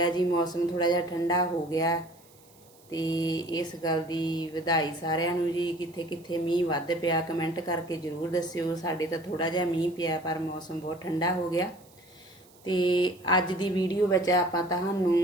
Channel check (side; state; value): right; noise; hiss, 28 dB below the sound